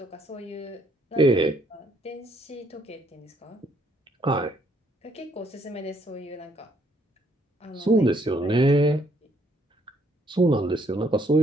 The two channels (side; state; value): both; normal; correlation 0.68